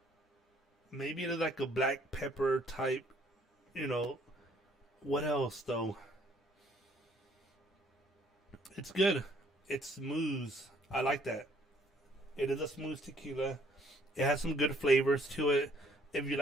Maybe it's like a black pepper type, you know. What else though? It's good. It's smooth. I like that. It is a smooth tequila. It has some good flavors to it. If you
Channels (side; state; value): both; normal; correlation 0.63